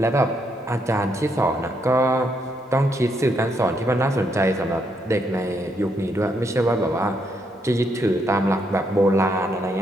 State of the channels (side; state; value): both; normal; correlation 0.76